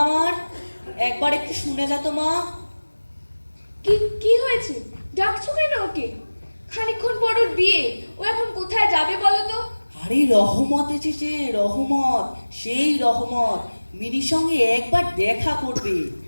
আমার, একবার একটু শুনে যা তো মা। কি হয়েছে? ডাকছো কেন ওকে? খানিকক্ষণ পর ওর বিয়ে, ও এখন কোথায় যাবে বলো তো? আরে রহমত এসেছে, রহমত, সেই রহমত মিনির সঙ্গে একবার দেখা করবে।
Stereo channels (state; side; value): inverted; both; correlation -1.00